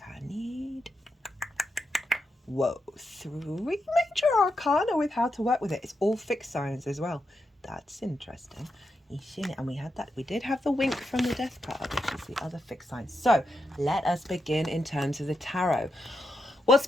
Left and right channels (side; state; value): both; normal; correlation 0.84